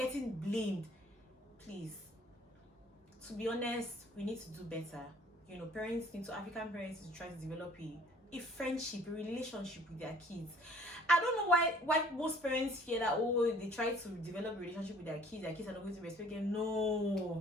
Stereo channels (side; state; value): both; normal; correlation 0.55